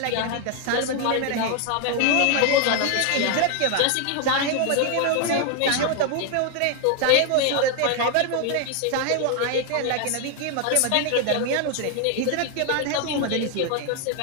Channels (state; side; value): different; both; correlation 0.00